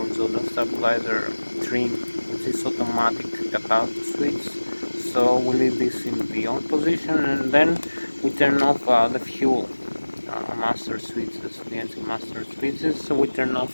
stabilizer trim, which is automatic cutout switch. So we leave this in the on position, and then we turn off the fuel master switches, the engine master switches. So we turn off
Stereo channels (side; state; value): both; inverted; correlation -1.00